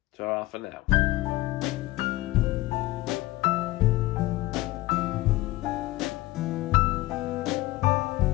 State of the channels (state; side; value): quieter; right; 18.4 dB